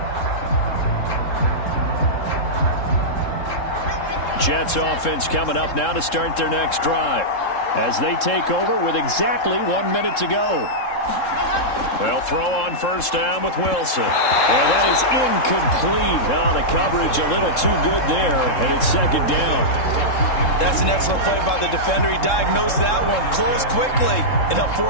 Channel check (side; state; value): right; late; 3.7 ms